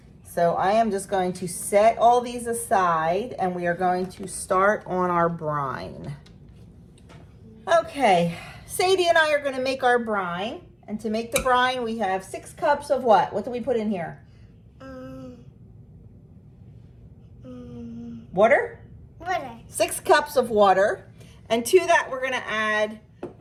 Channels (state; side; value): identical; both; correlation 1.00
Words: So I am just going to set all these aside and we are going to start on our brine. Okay, Sadie and I are gonna make our brine. And to make the brine, we have 6 cups of what? What do we put in here? Water? Water. 6 cups of water. And to that, we're gonna add